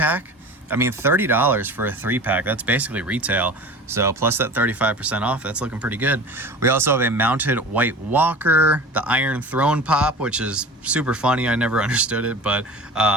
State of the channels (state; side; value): normal; both; correlation 0.37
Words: I mean, $30 for a 3-pack, that's basically retail. So plus that 35% off, that's looking pretty good. We also have a mounted White Walker, the Iron Throne pop, which is super funny. I never understood it, but